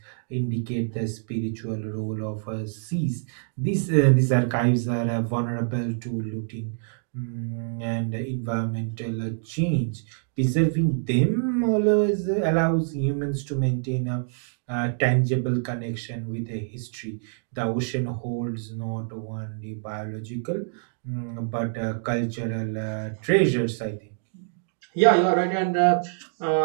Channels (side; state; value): left; silent; digital silence